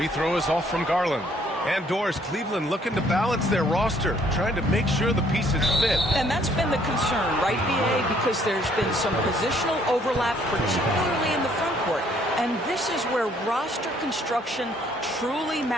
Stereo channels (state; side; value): normal; both; correlation 0.64